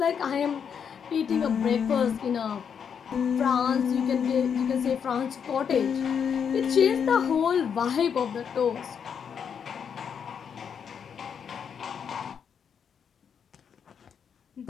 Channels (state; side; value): quieter; right; 7.3 dB